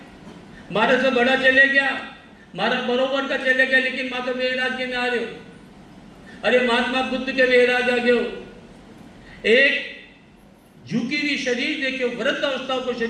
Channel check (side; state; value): both; identical; correlation 1.00